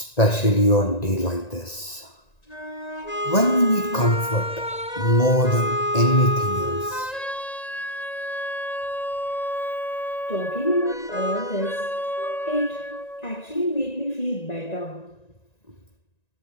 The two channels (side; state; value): right; late; 1.9 ms